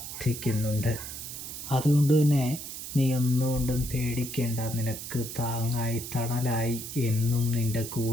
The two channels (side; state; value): right; noise; hiss, 9 dB below the sound